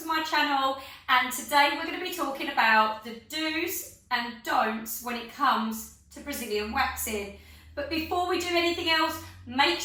my channel, and today we're going to be talking about the do's and don'ts when it comes to Brazilian waxing. But before we do anything else, make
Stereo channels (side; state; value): both; identical; correlation 1.00